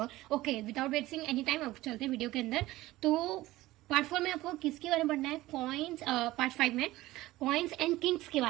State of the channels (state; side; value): quieter; left; 17.4 dB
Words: Okay, without wasting any time अब चलते हैं वीडियो के अंदर. तो पार्ट 4 में आपको किसके बारे में पढ़ना है? कॉइन्स. पार्ट 5 में कॉइन्स एंड किंग्स के